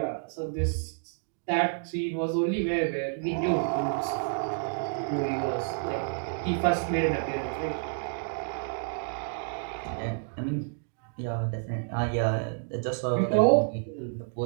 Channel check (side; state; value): left; silent; digital silence